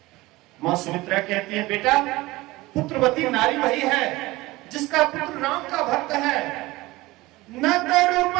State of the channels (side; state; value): left; quieter; 20.0 dB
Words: मां सुमित्रा कहती है बेटा पुत्रवती नारी वही है जिसका पुत्र राम का भक्त है। न तरु